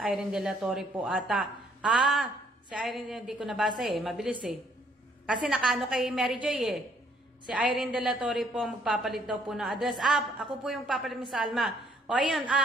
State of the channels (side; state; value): both; normal; correlation 0.65